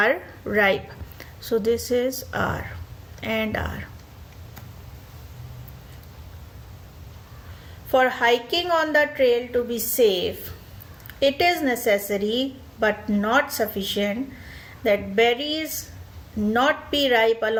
ripe. So this is R and R. For hiking on the trail to be safe, it is necessary but not sufficient that berries not be ripe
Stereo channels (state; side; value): identical; both; correlation 1.00